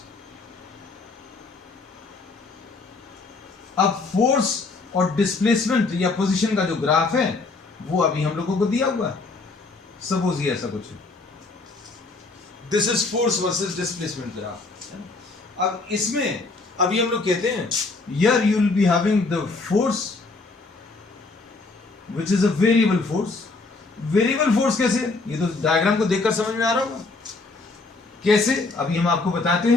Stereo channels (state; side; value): quieter; right; 3.7 dB